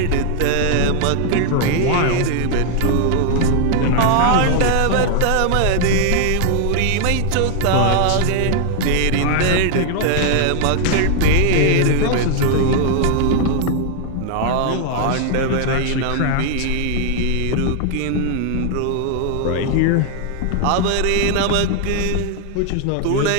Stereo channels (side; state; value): both; different; correlation 0.00